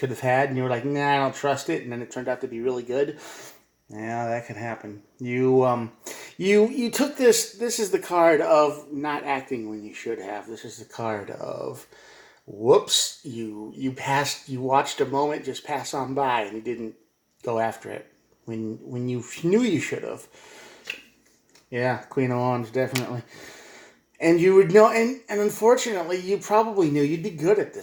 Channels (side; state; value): both; identical; correlation 1.00